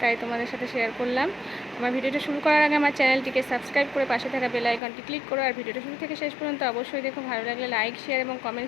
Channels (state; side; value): drops out; right; at 4.8 s